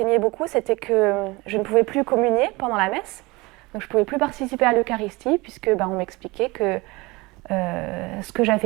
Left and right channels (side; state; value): left; quieter; 23.6 dB